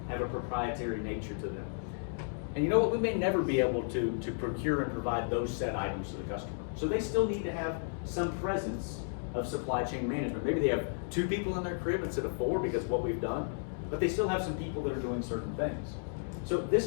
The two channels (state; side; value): silent; right; digital silence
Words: have a proprietary nature to them. And you know what, we may never be able to procure and provide those set items to the customer. So they still need to have some presence of supply chain management. Maybe they have 2 people in their crib instead of 4 because of what we've done, but they still have some people that are doing certain things. So